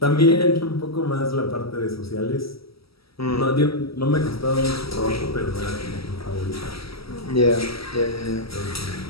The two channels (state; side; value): late; right; 0.76 ms